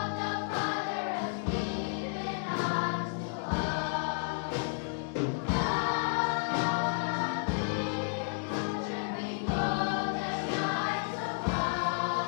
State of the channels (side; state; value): right; silent; digital silence